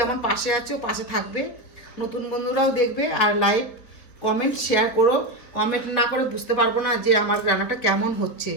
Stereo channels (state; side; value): late; right; 4.3 ms